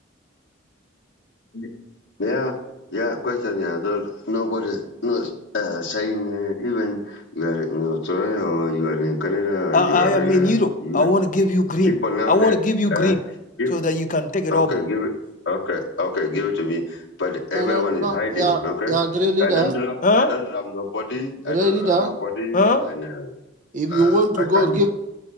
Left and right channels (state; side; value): normal; both; correlation 0.18